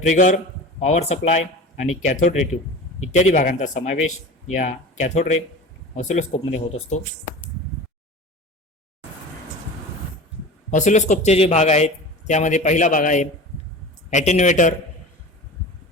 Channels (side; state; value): both; normal; correlation 0.35